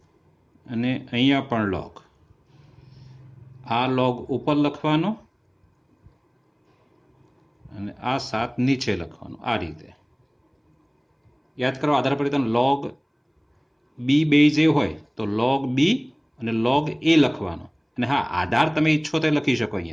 અને અહીંયા પણ log. આ log ઉપર લખવાનો અને આ 7 નીચે લખવાનું, આ રીતે. યાદ કરો આધાર પરિવર્તન log b બેઝ એ હોય તો log b અને log a લખવાનો. અને હા, આધાર તમે ઈચ્છો તો લખી શકો.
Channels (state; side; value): identical; both; correlation 1.00